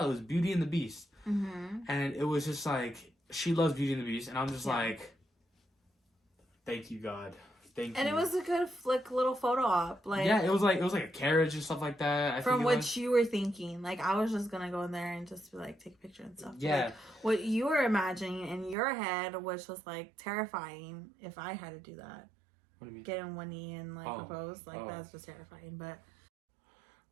it was Beauty and the Beast. And it was just like, she loves Beauty and the Beast, and I'm just like, thank you, God. Thank you. And it was a good little photo op. It was like a carriage and stuff like that. From what you were thinking. Like, I was just gonna go in there and just take a picture and stuff. Yeah. Like, what you were imagining in your head was just terrifying if I had to do that. What do you mean? Get in one knee and propose. That's just terrifying. But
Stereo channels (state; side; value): drops out; left; at 18.8 s